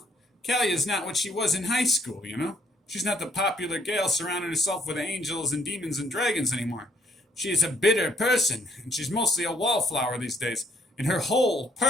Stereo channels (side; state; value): both; normal; correlation 0.67